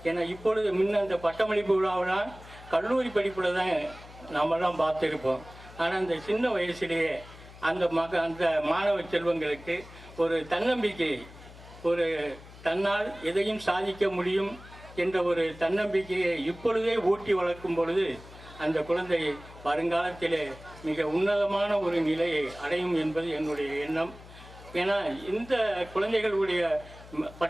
ஏன்னா இப்பொழுது முன்ன அந்த பட்டமளிப்பு விழாவெல்லாம் கல்லூரி படிப்பில் தான் நாமெல்லாம் பார்த்துருப்போம். ஆனால் அந்த சின்ன வயசுலேயே அந்த மாணவ செல்வங்களுக்கு ஒரு தன்னம்பிக்கை, ஒரு தன்னால் எதையும் சாதிக்க முடியும் என்ற ஒரு தன்னம்பிக்கையை இப்பொழுதே ஊட்டி வளர்க்கும் பொழுது அந்த குழந்தை வருங்காலத்திலே மிக உன்னதமான ஒரு நிலையை அடையும் என்பது என்னுடைய எண்ணம். ஏன்னா இந்த குழந்தைகளுடைய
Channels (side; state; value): left; noise; hum, 19 dB below the sound